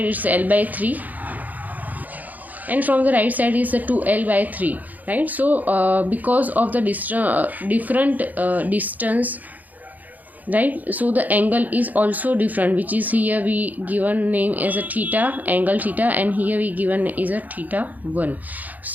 it's L by 3 and from the right side is the 2L by 3, right? So because of the different distance, right? So the angle is also different, which is here we given name as a theta, angle theta, and here we given is a theta 1.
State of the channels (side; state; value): left; late; 0.081 ms